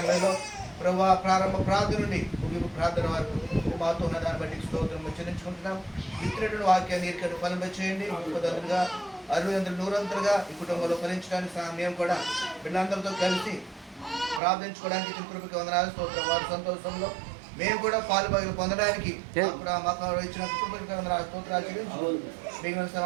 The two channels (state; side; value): drops out; left; at 14.4 s